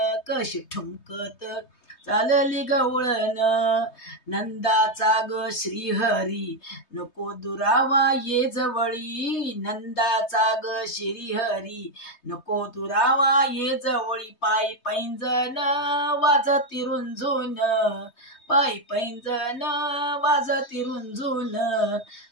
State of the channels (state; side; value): late; right; 3.2 ms